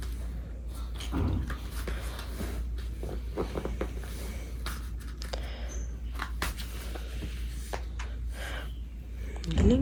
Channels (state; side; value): identical; both; correlation 1.00